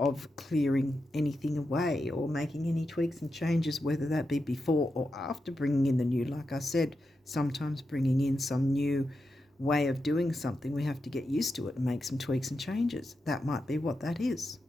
clearing anything away or making any tweaks and changes, whether that be before or after bringing in the new. Like I said, sometimes bringing in some new way of doing something, we have to get used to it and make some tweaks and changes. That might be what that is,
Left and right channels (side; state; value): both; normal; correlation 0.88